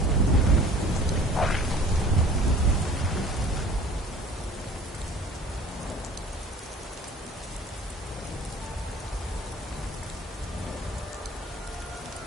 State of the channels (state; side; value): normal; both; correlation 0.48